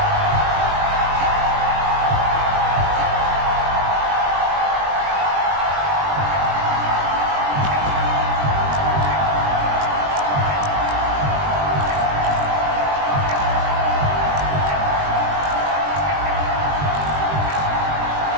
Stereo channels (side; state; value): left; late; 21 ms